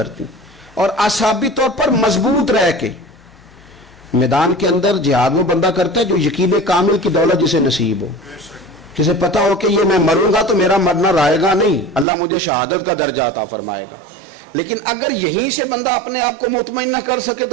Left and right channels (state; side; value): drops out; left; at 12.1 s